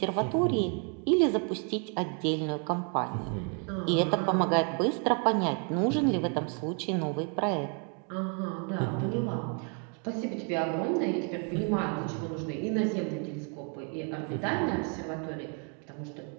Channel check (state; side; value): quieter; left; 39.4 dB